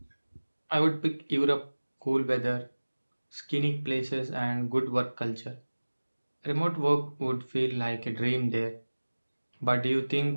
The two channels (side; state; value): both; inverted; correlation -1.00